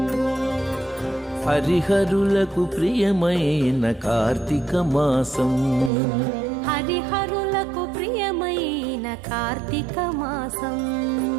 హరిహరులకు ప్రియమైన కార్తీక మాసం, హరిహరులకు ప్రియమైన కార్తీక మాసం,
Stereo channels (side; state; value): left; drops out; at 5.9 s